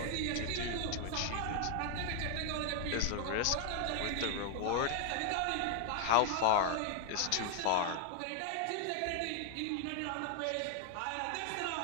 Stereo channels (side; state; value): both; different; correlation 0.00